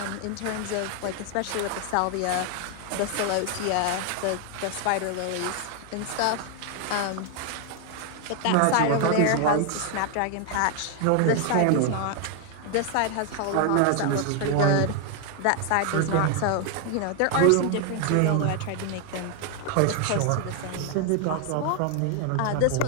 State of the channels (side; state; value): both; different; correlation 0.01